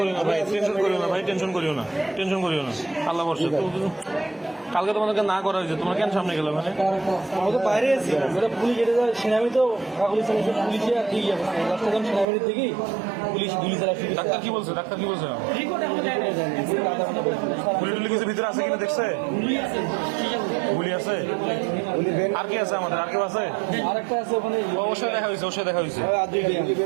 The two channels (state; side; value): drops out; left; at 12.2 s